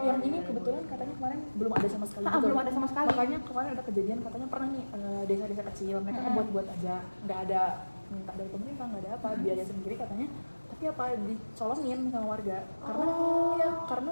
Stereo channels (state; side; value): inverted; both; correlation -1.00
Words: yang ini kebetulan katanya kemarin belum ada sama sekali. Belum ada sama sekali. Makanya kemarin ada kejadian katanya pernah nih desa-desa kecil mereka buat aja, nggak ada minta dari pemerintah, nggak ada apa, biaya sendiri katanya. Tapi apa dicolongin sama warga karena